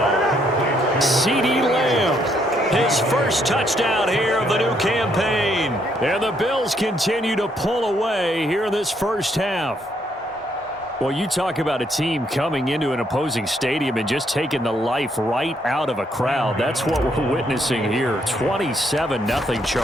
CeeDee Lamb. his first touchdown here of the new campaign. And the Bills continue to pull away here in this first half. Well, you talk about a team coming into an opposing stadium and just taking the life right out of a crowd. That's what we're witnessing here. 27-0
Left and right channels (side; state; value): both; normal; correlation 0.72